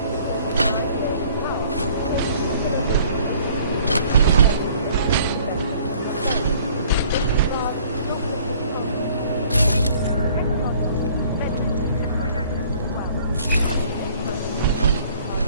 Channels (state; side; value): inverted; both; correlation -0.55